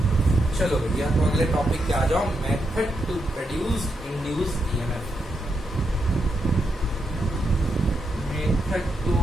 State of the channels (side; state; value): both; normal; correlation 0.83